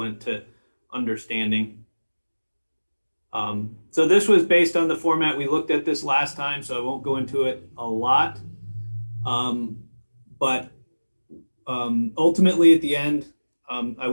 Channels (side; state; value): both; inverted; correlation -1.00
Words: to understanding. So this was based on the format. We looked at this last time, so I won't go into it a lot. But ultimately at the end, I